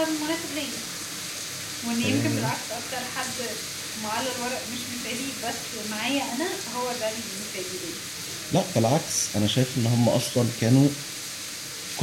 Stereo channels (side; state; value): both; identical; correlation 1.00